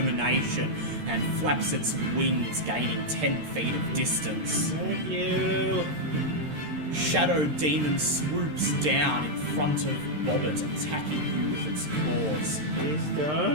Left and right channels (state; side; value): late; left; 13 ms